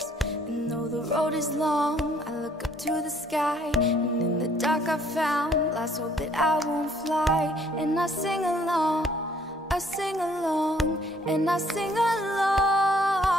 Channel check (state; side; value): normal; both; correlation 0.62